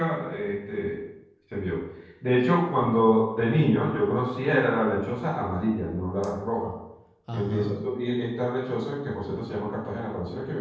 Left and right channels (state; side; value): identical; both; correlation 1.00